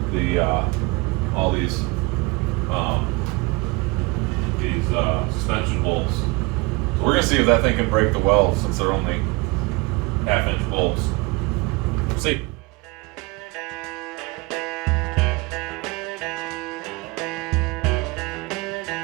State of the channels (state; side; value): quieter; left; 25.5 dB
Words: the all these suspension bolts. So we're gonna see if that thing can break the weld since they're only 1/2-inch bolts. See.